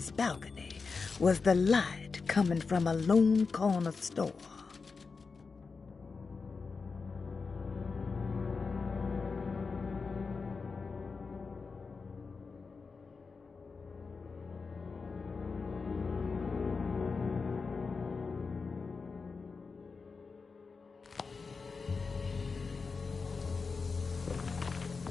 balcony was the light coming from a lone corner store.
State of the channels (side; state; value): right; quieter; 4.7 dB